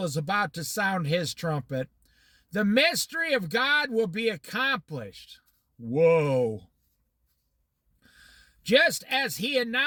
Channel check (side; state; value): both; identical; correlation 1.00